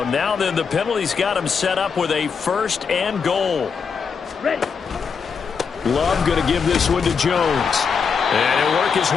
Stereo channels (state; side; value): quieter; right; 5.9 dB